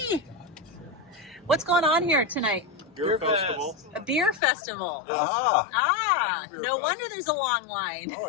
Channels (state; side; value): drops out; right; at 4.4 s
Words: What's going on here tonight? Beer festival. A beer festival. Yes. Ah, Beer no fest. wonder there's a long line.